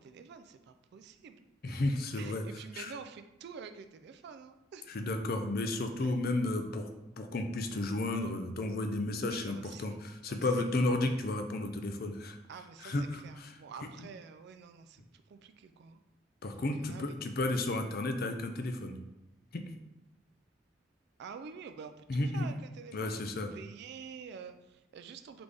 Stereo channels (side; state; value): both; normal; correlation 0.64